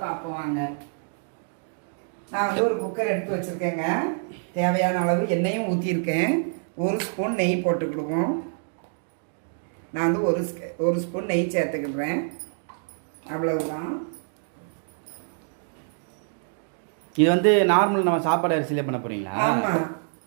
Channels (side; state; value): left; silent; digital silence